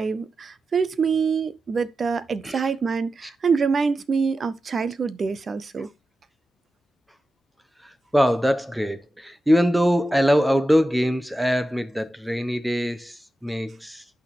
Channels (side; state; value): both; normal; correlation 0.92